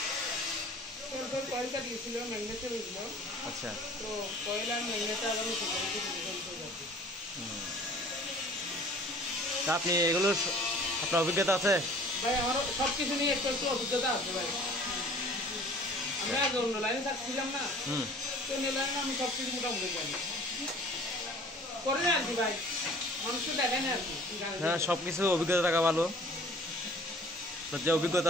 আচ্ছা, তা আপনি এগুলোর আপনার অভিজ্ঞতা আছে? ভাই আমার সবকিছু নিয়ে একটু অভিজ্ঞতা আছে ভাই। আমরা আগে অন্য লাইনে থাকছিলাম না, তো অন্য লাইনে আমি সবকিছু মোটামুটি জানি করে না আর কি ভাই, মানুষকে দেখেন আর কি। হ্যাঁ, সবকিছু অভিজ্ঞতা থাকা ভালো। যে অভিজ্ঞতা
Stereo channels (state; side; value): normal; both; correlation 0.49